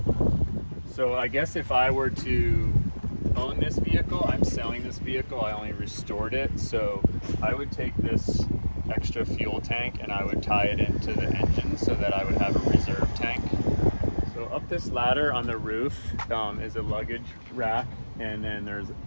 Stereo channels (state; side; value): inverted; both; correlation -1.00